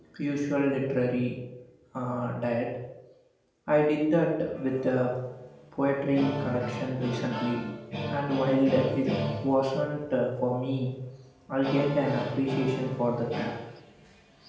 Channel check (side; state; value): both; identical; correlation 1.00